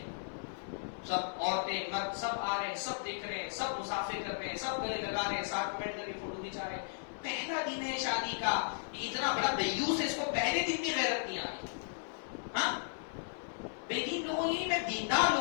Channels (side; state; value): right; silent; digital silence